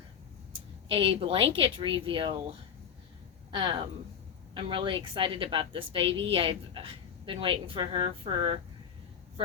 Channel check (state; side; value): quieter; right; 7.7 dB